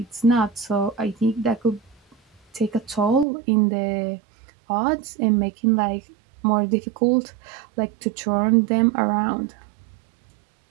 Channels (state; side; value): drops out; left; at 3.2 s